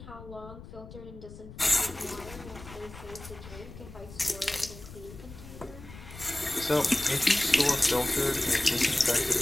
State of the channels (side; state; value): left; noise; rumble, 15 dB below the sound